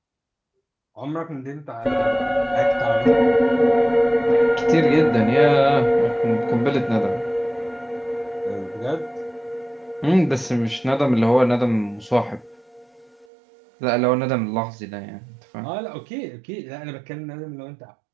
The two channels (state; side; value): drops out; left; at 13.2 s